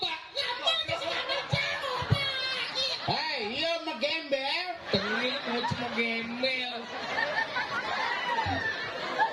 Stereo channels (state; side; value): identical; both; correlation 1.00